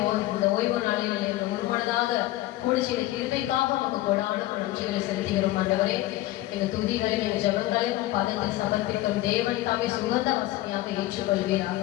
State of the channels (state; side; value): quieter; right; 16.3 dB